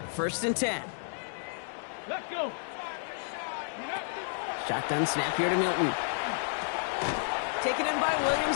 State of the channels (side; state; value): right; silent; digital silence